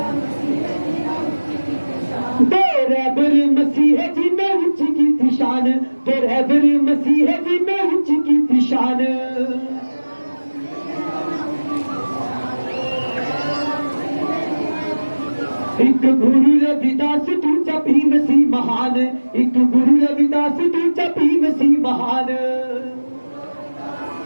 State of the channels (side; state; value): both; inverted; correlation -1.00